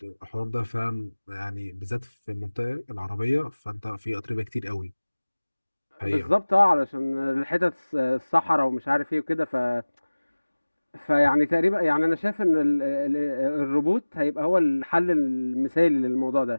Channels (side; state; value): both; inverted; correlation -1.00